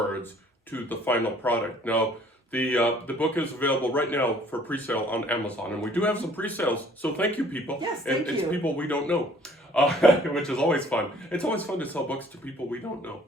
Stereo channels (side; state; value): both; normal; correlation 0.57